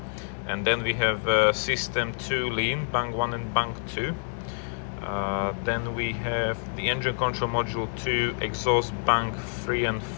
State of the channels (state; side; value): silent; right; 60 dB below the other